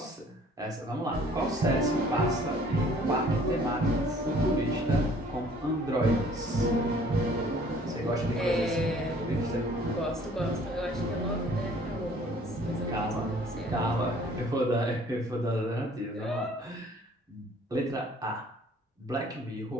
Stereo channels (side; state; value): both; normal; correlation 0.55